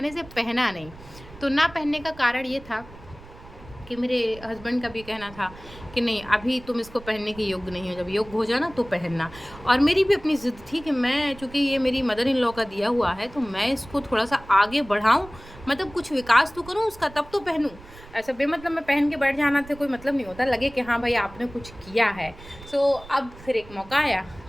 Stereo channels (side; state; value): right; noise; rumble, 19 dB below the sound